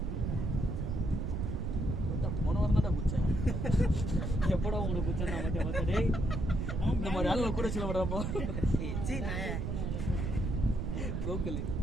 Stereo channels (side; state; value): right; noise; rumble, 1 dB below the sound